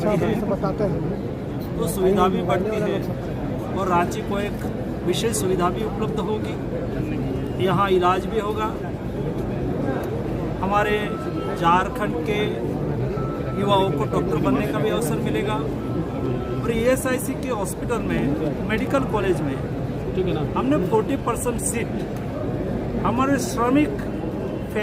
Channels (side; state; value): both; identical; correlation 1.00